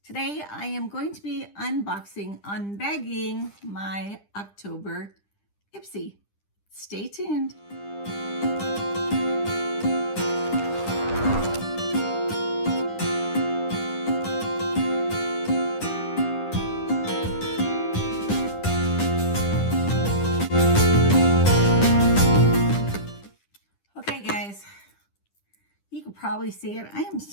Today I am going to be unbagging my October Ipsy. Stay tuned. Okay guys, you can probably see it. I am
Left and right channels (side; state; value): right; late; 10 ms